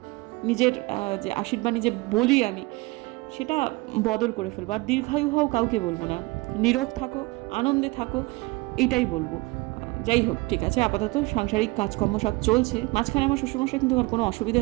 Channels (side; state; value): left; quieter; 23.6 dB